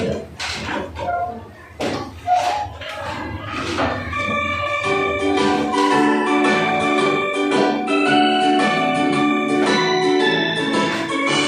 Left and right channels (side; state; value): both; identical; correlation 1.00